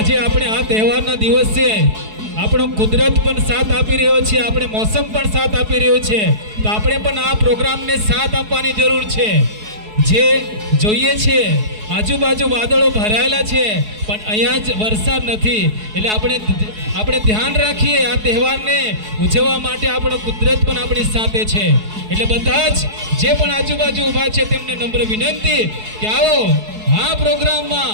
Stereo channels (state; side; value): late; left; 4.7 ms